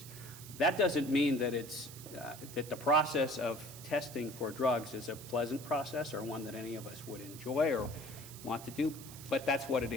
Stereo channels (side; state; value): right; noise; hiss, 15 dB below the sound